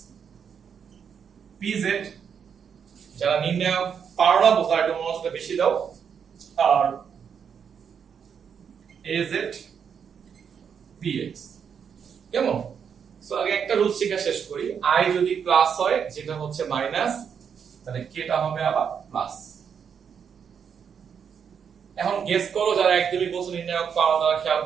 pz, যারা নির্ণয় পারো না বোঝা একটু মনোযোগটা বেশি দাও, আর az px, কেমন? সো আগে একটা রুল শিখা শেষ করি। i যদি প্লাস হয় যেটা হচ্ছে মাইনাস, তাহলে কেটা হবে আবার প্লাস। এখন গেস করো যারা একদমই বলছো নির্ণায়ক পাওয়া, তারা খেয়াল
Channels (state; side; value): quieter; left; 7.2 dB